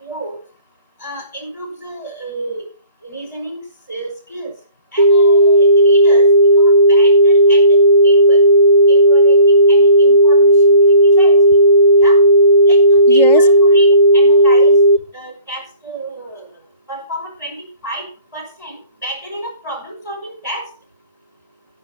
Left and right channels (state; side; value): inverted; both; correlation -0.51